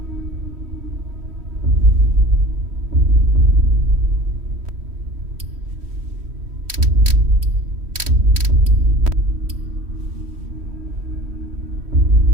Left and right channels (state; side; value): late; left; 3.1 ms